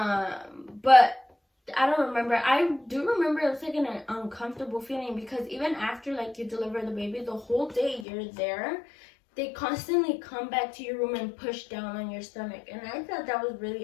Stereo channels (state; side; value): drops out; right; at 8.1 s